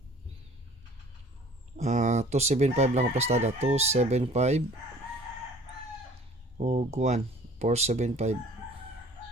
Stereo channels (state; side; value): normal; both; correlation 0.50